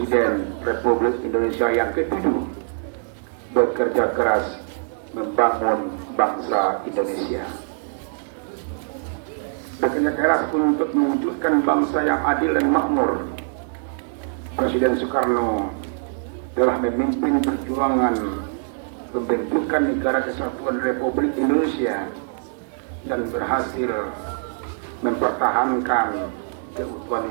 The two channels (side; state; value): left; silent; digital silence